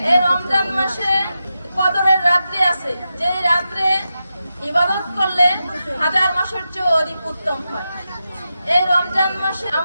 এই রমজান মাসে কদরের রাত্রি আছে, যে রাত্রে ইবাদত করলে হাজার মাসের চেয়ে অধিক উত্তম হয়। এই রমজান মাসে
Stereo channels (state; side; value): inverted; both; correlation -0.90